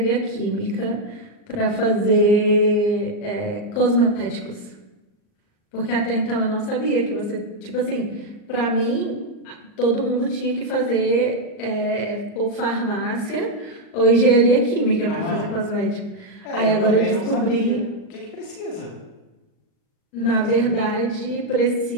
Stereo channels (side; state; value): right; late; 38 ms